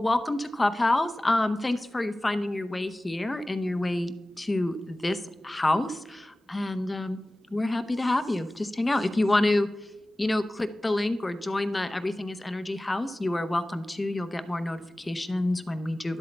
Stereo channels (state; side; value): normal; both; correlation 0.97